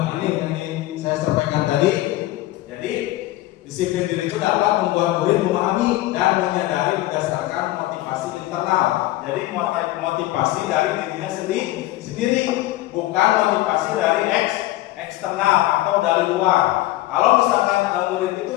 Ini yang saya sampaikan tadi, jadi disiplin diri itu dapat membuat murid memahami dan menyadari berdasarkan motivasi internal. Jadi motivasi dari dirinya sendiri, bukan motivasi dari eksternal atau dari luar. Kalau misalkan murid itu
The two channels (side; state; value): right; quieter; 16.6 dB